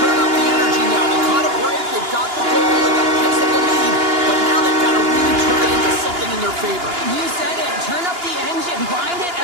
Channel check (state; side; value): late; left; 2.9 ms